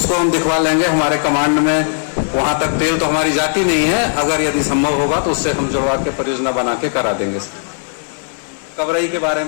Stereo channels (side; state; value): right; silent; digital silence